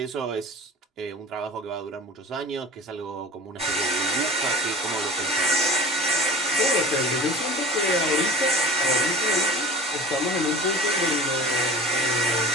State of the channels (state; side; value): normal; both; correlation 0.39